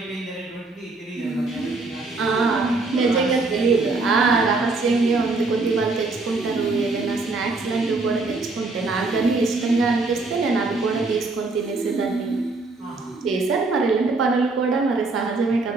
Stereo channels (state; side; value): quieter; left; 3.6 dB